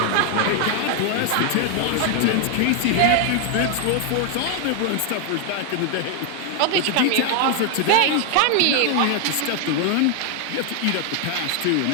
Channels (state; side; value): different; both; correlation 0.00